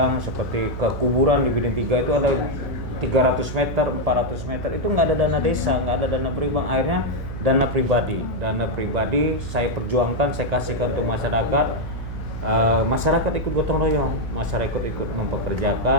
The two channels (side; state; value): right; noise; hum, 8 dB below the sound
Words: seperti ke kuburan di Bidin 3 itu ada 300 meter, 400 meter itu nggak ada dana desa, nggak ada dana pribadi, akhirnya dana pribadi saya perjuangkan, saya kasihkan untuk masyarakat. Masyarakat ikut gotong royong, masyarakat ikut